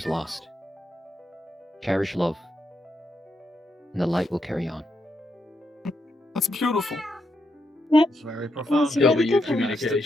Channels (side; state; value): both; normal; correlation 0.82